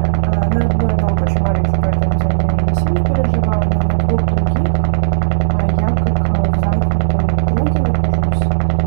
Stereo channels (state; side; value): silent; left; digital silence